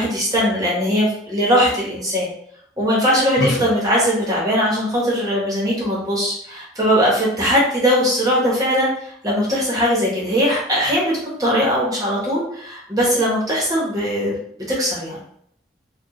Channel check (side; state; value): both; normal; correlation 0.32